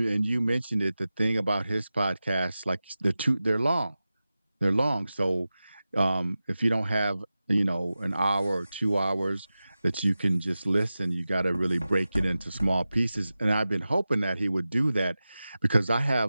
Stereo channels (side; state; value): both; inverted; correlation -0.95